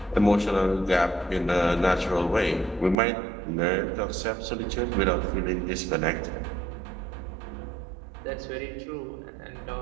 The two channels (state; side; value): drops out; left; at 3.0 s